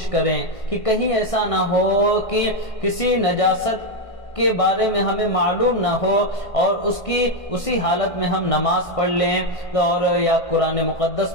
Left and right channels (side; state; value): right; late; 1.6 ms